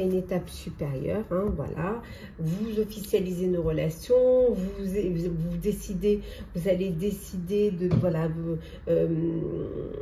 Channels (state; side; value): identical; both; correlation 1.00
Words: une étape supérieure, hein, voilà, vous officialisez une relation, vous décidez, vous allez décider de, voilà,